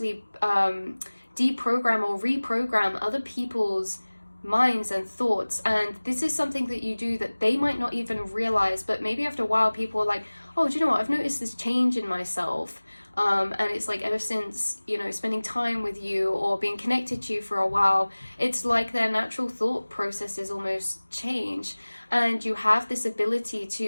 deprogram or reprogram other people's minds and thoughts. And this is something that you do that they might not even realize, but maybe after a while people are like, oh, do you know what, I've noticed this change in myself. And it's like ever since, you know, spending time with you or being connected to you for a while, it's like their natural thought processes almost change. And you have this ability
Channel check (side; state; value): both; inverted; correlation -1.00